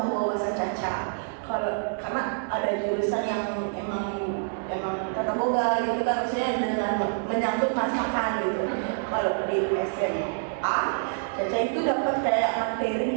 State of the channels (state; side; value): silent; left; digital silence